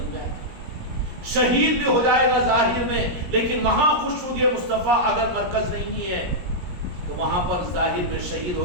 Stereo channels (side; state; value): left; late; 17 ms